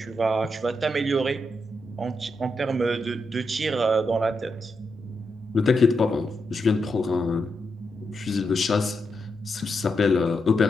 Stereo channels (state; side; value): normal; both; correlation 0.84